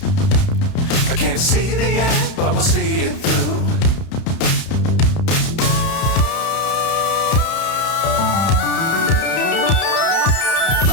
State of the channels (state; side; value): late; right; 31 ms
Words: I can't see the end, but we'll see it through.